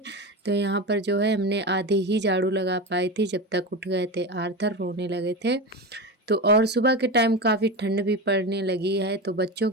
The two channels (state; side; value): normal; both; correlation 0.22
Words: तो यहाँ पर जो है हमने आधी ही झाड़ू लगा पाई थी जब तक उठ गए थे आर्थर, रोने लगे थे। तो और सुबह के टाइम काफ़ी ठंड भी पड़ने लगी है, तो बच्चों